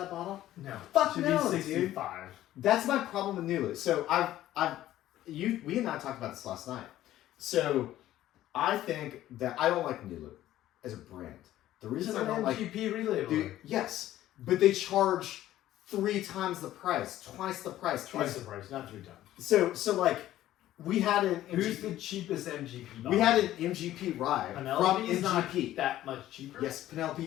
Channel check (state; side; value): quieter; right; 13.7 dB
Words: bottle? No. Fuck It should no, be dude. 65. That's my problem with Nulu. So we and I talked about this last night. So I think that I don't like Nulu as a brand. The It's reason an I don't like MGP relabeler. Dude, yes, but they charge 3 times the price, twice the price. Twice the price, not 3 times. So like, we had an Who's MGP, the cheapest MGP bottle? we had an MGP rye Penelope from is not MGP. that much cheaper. Yes,